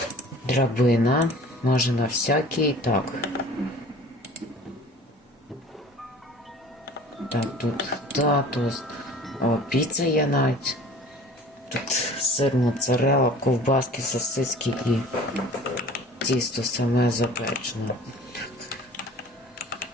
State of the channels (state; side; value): normal; both; correlation 0.46